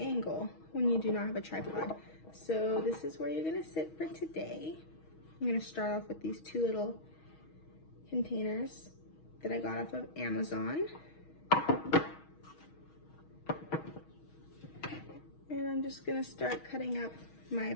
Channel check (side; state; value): right; late; 6.3 ms